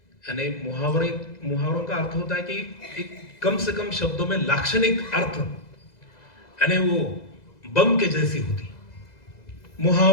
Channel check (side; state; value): right; late; 2.0 ms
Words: यानी मुहावरों का अर्थ होता है कि एक कम से कम शब्दों में लाक्षणिक अर्थ, यानी वो बम के जैसी होती।